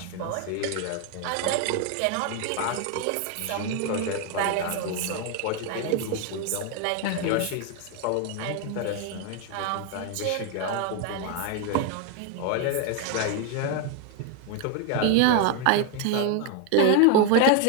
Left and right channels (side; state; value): both; different; correlation 0.01